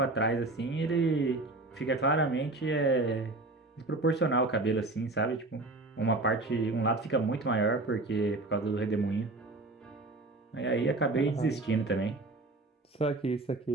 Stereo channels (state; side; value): quieter; left; 3.0 dB